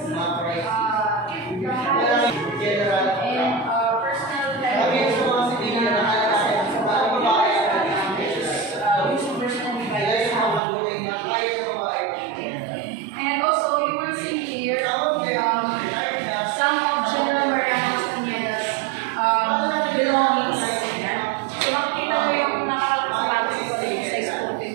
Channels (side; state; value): left; drops out; at 10.6 s